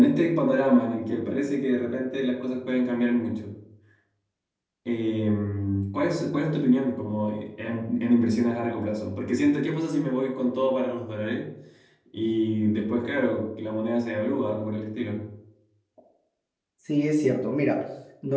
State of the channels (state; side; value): identical; both; correlation 1.00